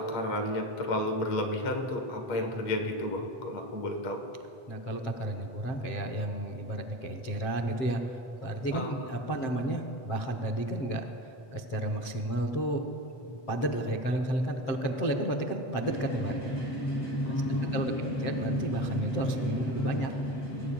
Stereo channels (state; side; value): late; right; 7.7 ms